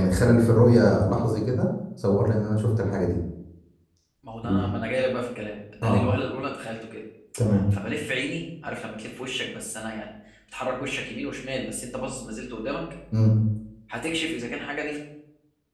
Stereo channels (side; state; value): both; identical; correlation 1.00